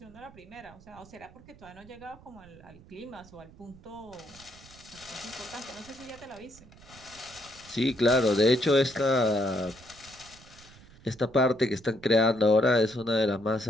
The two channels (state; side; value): noise; right; rumble, 22 dB below the sound